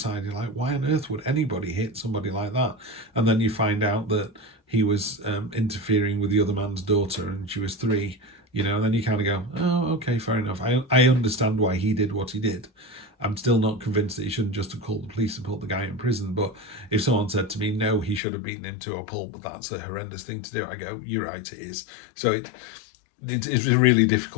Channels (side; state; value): right; drops out; at 18.2 s